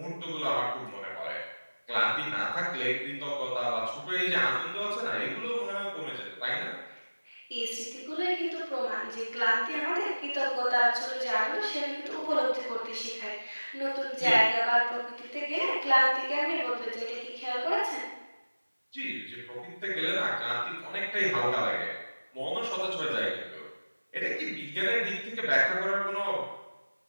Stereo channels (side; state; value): both; inverted; correlation -1.00